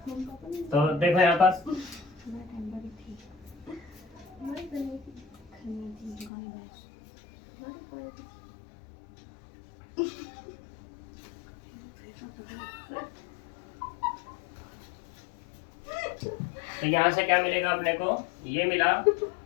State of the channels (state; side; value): drops out; right; at 6.3 s